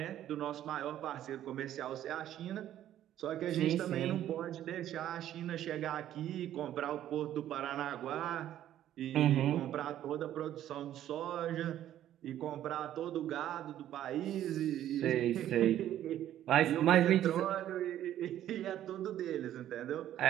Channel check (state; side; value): quieter; left; 11.9 dB